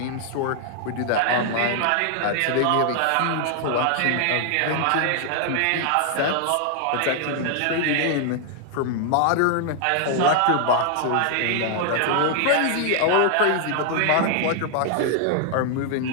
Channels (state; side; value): different; both; correlation 0.00